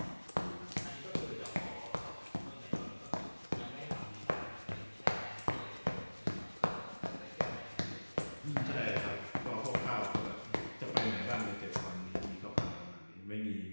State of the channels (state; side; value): inverted; both; correlation -1.00